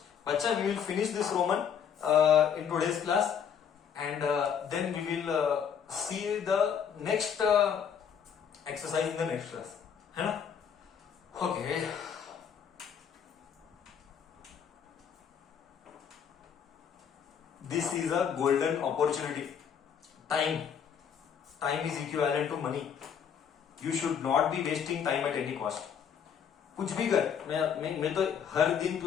बच्चा we will finish this roman in today's class and then we will see the next exercise in the next class, है ना? Okay this is a golden opportunity. Time is equivalent to money. You should not be wasting time at any cost. कुछ भी कर, मैं तो हर दिन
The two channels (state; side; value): quieter; right; 7.7 dB